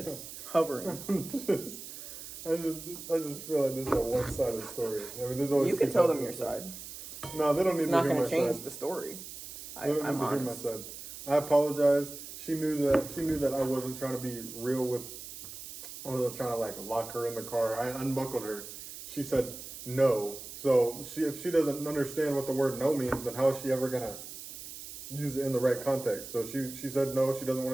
Hovering. I just feel like this is a one-sided story. I mean, there's always You can tell them your side. No, they don't need It's to not hear going my to change side. the story. They don't I'm need to hear my honest. side. I apologize. She knew that I wasn't trying to be real with, I wasn't trying to like lock her in the car. I unbuckled her. She said no. So if she doesn't understand what the word no means, then how is she ever gonna use it in the right context? So she said no, she doesn't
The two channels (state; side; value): noise; right; hiss, 12 dB below the sound